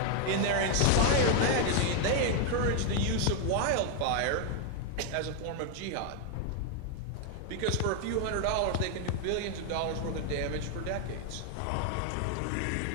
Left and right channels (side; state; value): both; different; correlation 0.00